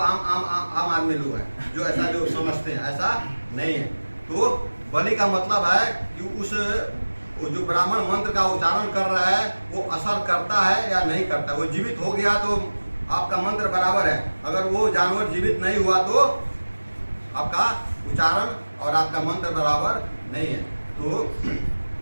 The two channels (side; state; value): both; inverted; correlation -1.00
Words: आदमी लोग हैं जो ऐसा जो समझते हैं, ऐसा नहीं है। तो बलि का मतलब है कि उस जो ब्राह्मण मंत्र का उच्चारण कर रहा है वो असर करता है या नहीं करता। वो जीवित हो गया तो आपका मंत्र बराबर है, अगर वो जानवर जीवित नहीं हुआ तो आपका उच्चारण और आपका मंत्र बराबर नहीं है। तो